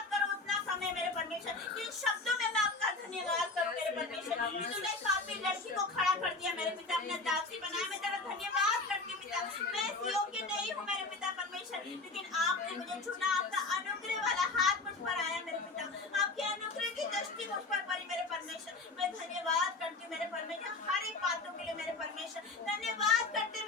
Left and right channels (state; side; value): quieter; right; 3.5 dB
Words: करो उतना कम है मेरे परमेश्वर, इन शब्दों में मैं आपका धन्यवाद करूँ मेरे परमेश्वर, तूने काफी लड़की को खड़ा कर दिया मेरे पिता, अपना दासी बनाया, मैं तेरा धन्यवाद करती हूँ पिता, मैं इस योग्य नहीं हूँ मेरे पिता परमेश्वर, लेकिन आपने मुझे चुना, आपका अनुग्रह वाला हाथ मुझ पर आया मेरे पिता, आपके अनुग्रह की दृष्टि मुझ पर पड़ी मेरे परमेश्वर, मैं धन्यवाद करती हूँ मेरे परमेश्वर, हर एक बातों के लिए मेरे परमेश्वर, धन्यवाद करते